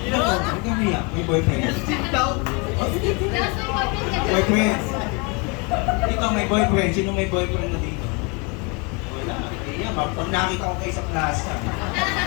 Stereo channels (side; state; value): right; quieter; 30.2 dB